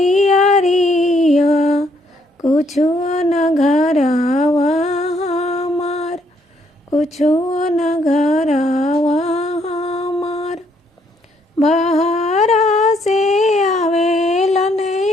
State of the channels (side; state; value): both; normal; correlation 0.70